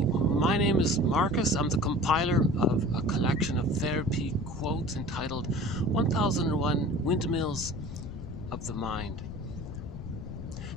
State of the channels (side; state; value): left; noise; rumble, 10 dB below the sound